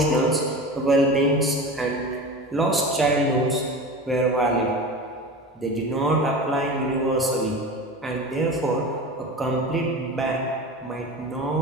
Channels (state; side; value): normal; both; correlation 0.31